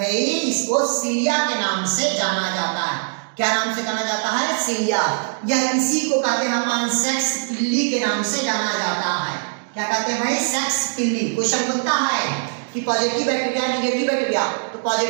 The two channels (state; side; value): silent; left; 64 dB below the other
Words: इसको सीलिया के नाम से जाना जाता है। क्या नाम से जाना जाता है? सीलिया। या इसी को कहते हैं अपन सेक्स पिल्ली के नाम से जाना जाता है। क्या कहते हैं भाई? सेक्स पिल्ली। क्वेश्चन बनता है कि पॉजिटिव बैक्टीरिया निगेटिव बैक्टीरिया, तो